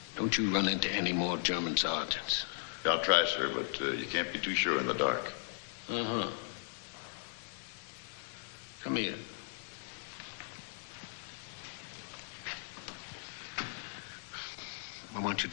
don't you run into any more German sergeants. I'll try, sir, but you can't be too sure in the dark. Uh-huh. Come here. I want you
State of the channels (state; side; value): silent; right; digital silence